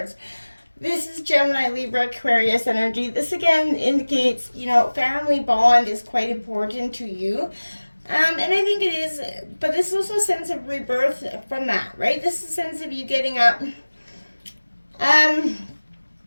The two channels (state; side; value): inverted; both; correlation -1.00